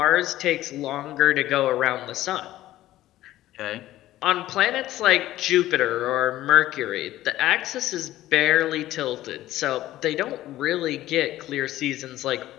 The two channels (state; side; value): quieter; right; 14.9 dB